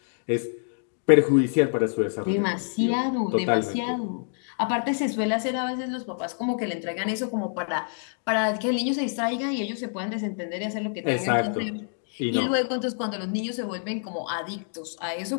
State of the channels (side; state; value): right; silent; digital silence